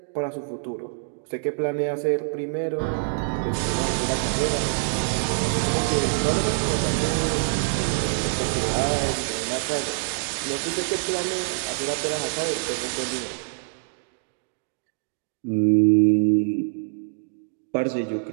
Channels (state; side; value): silent; left; digital silence